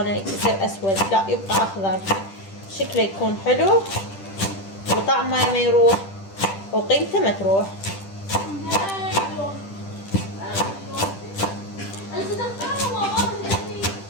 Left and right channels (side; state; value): right; late; 10 ms